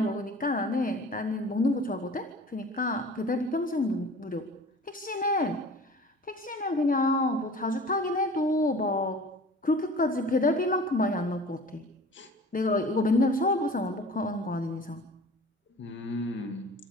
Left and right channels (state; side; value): normal; both; correlation 0.43